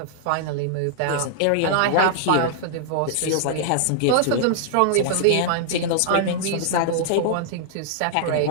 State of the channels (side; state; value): both; different; correlation -0.01